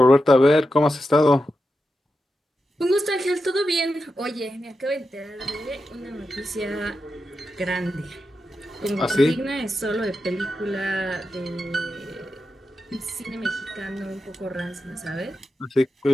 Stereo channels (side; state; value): both; normal; correlation 0.89